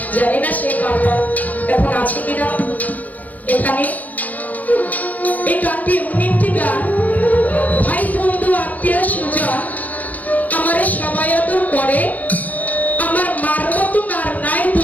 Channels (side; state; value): right; late; 0.079 ms